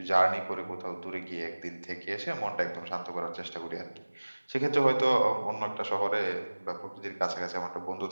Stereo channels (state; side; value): inverted; both; correlation -1.00